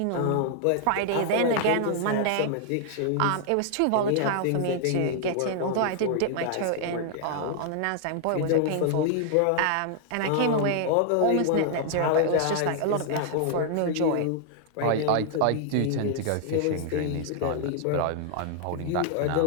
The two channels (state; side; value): different; both; correlation 0.00